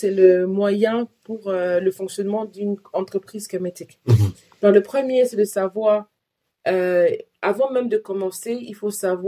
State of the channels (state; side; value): identical; both; correlation 1.00